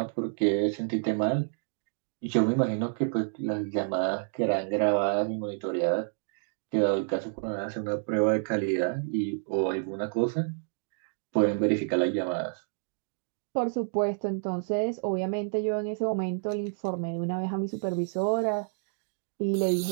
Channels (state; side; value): silent; left; digital silence